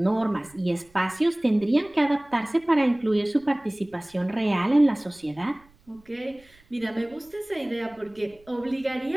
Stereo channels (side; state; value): right; noise; rumble, 29 dB below the sound